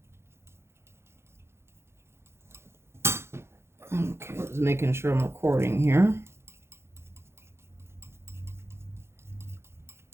Okay, just making sure I'm recording here.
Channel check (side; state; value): left; late; 0.12 ms